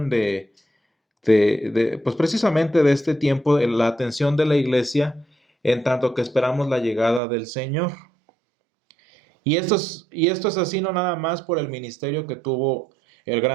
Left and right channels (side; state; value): left; drops out; at 7.2 s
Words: pues precisamente de este tiempo, la atención de la iglesia, en tanto que esperamos la llegada del Señor. Y esto es así no nada más por el ministerio que tuvo el